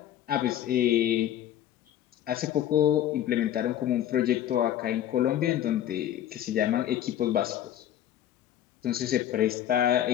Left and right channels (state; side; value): quieter; right; 11.3 dB